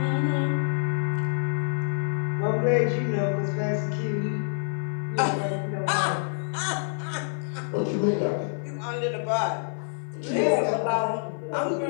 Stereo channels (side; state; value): right; silent; digital silence